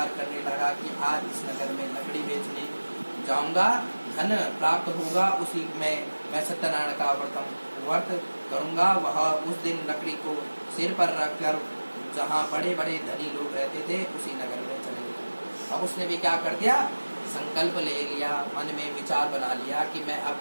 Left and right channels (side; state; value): both; inverted; correlation -1.00